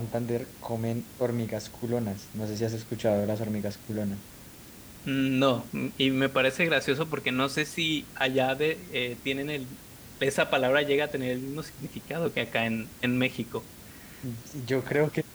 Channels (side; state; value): both; identical; correlation 1.00